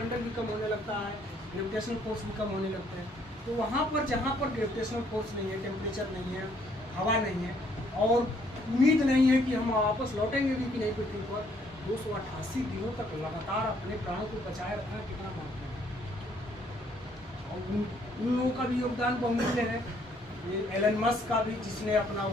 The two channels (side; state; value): both; normal; correlation 0.66